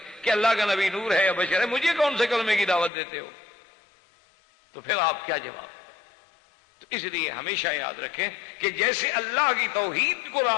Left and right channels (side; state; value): right; drops out; at 2.9 s